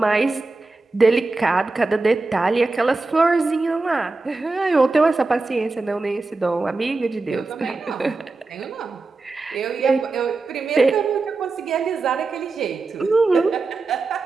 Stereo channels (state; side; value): quieter; left; 3.6 dB